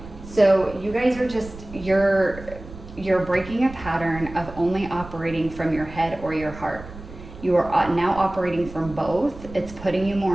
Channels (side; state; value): right; noise; rumble, 15 dB below the sound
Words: So you guys are just, you're breaking a pattern of only operating from your head or your heart. You are now operating from both. It's putting you